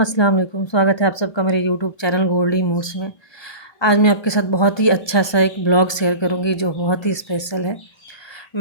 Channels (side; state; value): right; late; 1.2 ms